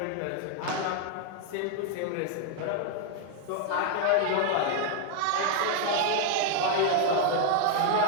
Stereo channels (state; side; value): different; both; correlation 0.00